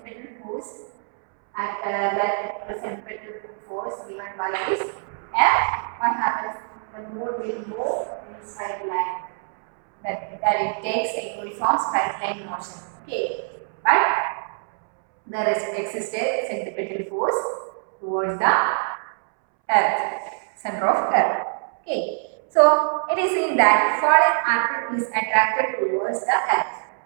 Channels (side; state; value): left; silent; 62 dB below the other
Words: force, the centripetal force given by this F, what happens? The moon will move in straight line. That it takes a uniform straight line motion. Okay, but there exists a centripetal force towards the earth, center of earth. Okay, so it is in that falling apple is attracted towards the earth.